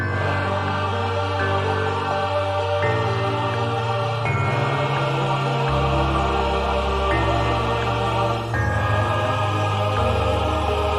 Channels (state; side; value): identical; both; correlation 1.00